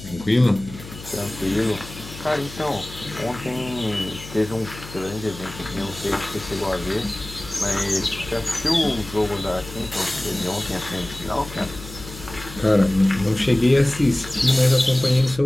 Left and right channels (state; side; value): noise; left; hum, 15 dB below the sound